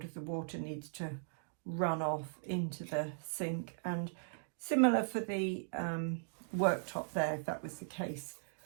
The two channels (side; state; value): left; silent; digital silence